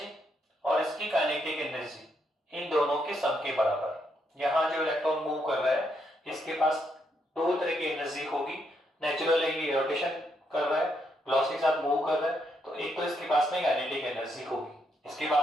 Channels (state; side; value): normal; both; correlation 0.77